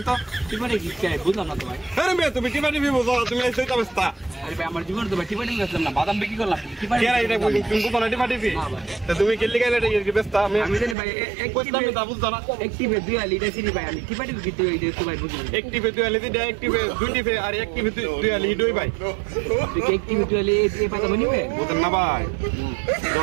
তো টিপাটি কি খাই বুঝলাম না তো ভাই আরে মেয়ে তুমি টিপাটি পিবো তুমি এই সেইটা বস্তা আরে ভাই আমার জীবন তো ভাই টিপাটি গেছিলাম না বাদাম বিক্রি করলাম টিপাটি কেরা এটা তুমি কোন টিপাটি পি তো তুমি কেলি গাইলে এটা কি বস্তা আমি জানি ভাই এক বস্তা আমি তা বুঝতা না একটিভে 2 আলি এটা চিনি ভাই আমি টিপাটি বিক্রি করি তো ভাই বুঝলাম একটিভে 2 আলি দিটা একটিভে 2 টিভে আর একটিভে 2 আলি দুই ভাই তুই একটিভে 2 আলি এই বাদাম নিবে বুঝেন না ভাই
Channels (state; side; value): drops out; left; at 11.0 s